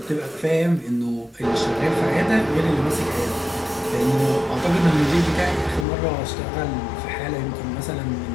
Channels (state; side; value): drops out; right; at 5.9 s